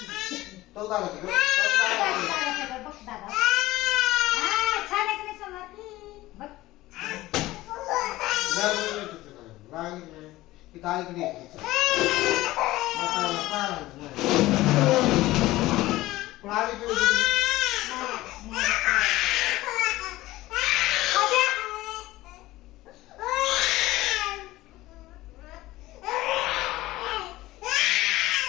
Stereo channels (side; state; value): right; quieter; 17.5 dB